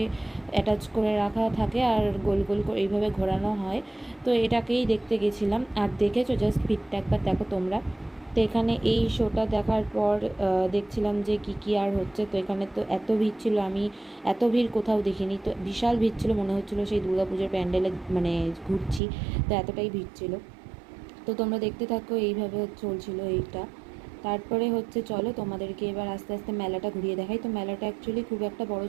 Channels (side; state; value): left; drops out; at 19.0 s